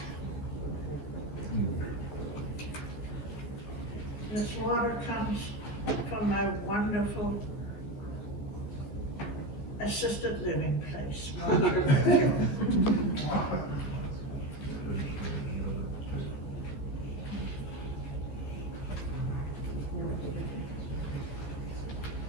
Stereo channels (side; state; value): right; late; 14 ms